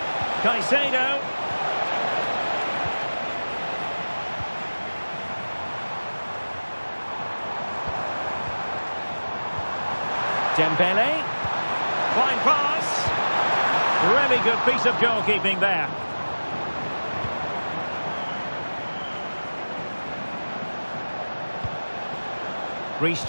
Caicedo. Dembele. Fine pass. Really good piece of goalkeeping there. Reece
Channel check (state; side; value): inverted; both; correlation -1.00